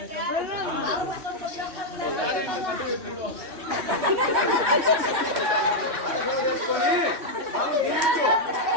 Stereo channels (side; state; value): left; late; 3.1 ms